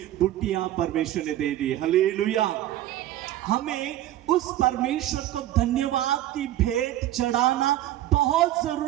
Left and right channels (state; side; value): quieter; left; 13.8 dB